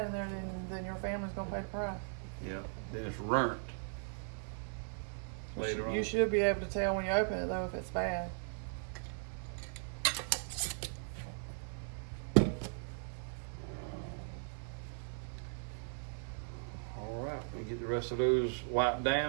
in there, then your family's gonna pay the price. Yeah, then it's burnt later on. You should be able to tell when you open it though if it's bad. All right, we get the rest of those wiped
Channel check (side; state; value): left; silent; 52 dB below the other